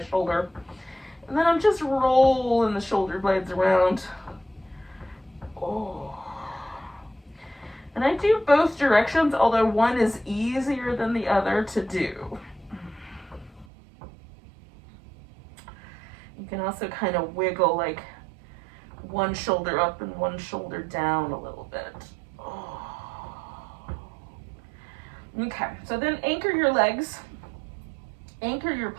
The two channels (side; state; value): left; drops out; at 13.7 s